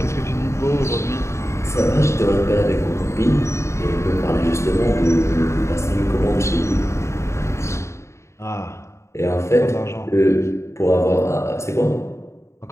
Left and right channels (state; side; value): late; right; 0.14 ms